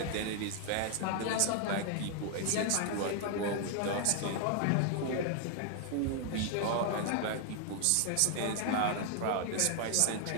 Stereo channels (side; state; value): both; different; correlation 0.00